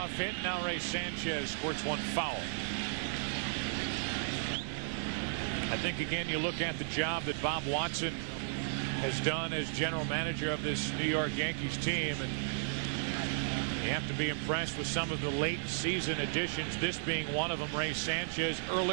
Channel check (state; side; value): silent; left; digital silence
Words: hit. Now Ray Sanchez squirts one foul. I think, again, you look at the job that Bob Watson has done as general manager of this New York Yankees team, and you have to be impressed with some of the late season additions, this being one of them. Ray Sanchez,